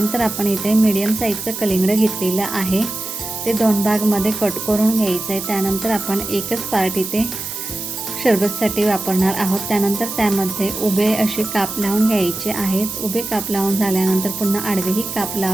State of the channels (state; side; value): noise; right; hiss, 7 dB below the sound